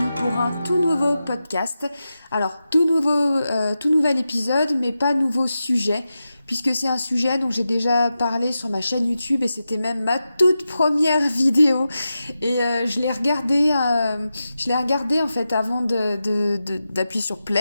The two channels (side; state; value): both; inverted; correlation -0.91